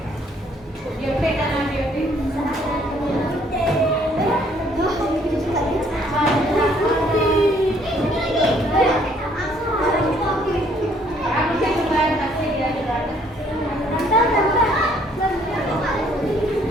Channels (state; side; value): normal; both; correlation 0.63